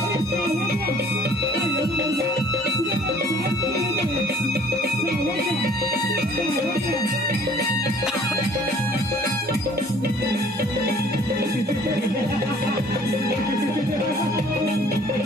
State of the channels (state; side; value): normal; both; correlation 0.54